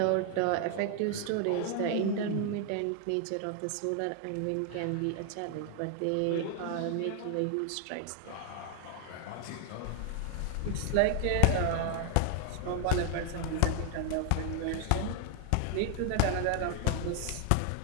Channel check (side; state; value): both; different; correlation 0.00